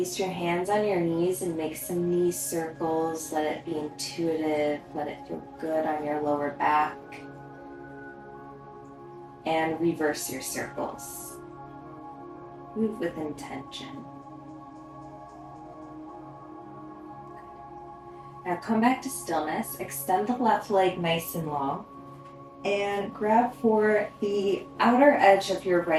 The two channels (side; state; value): both; identical; correlation 1.00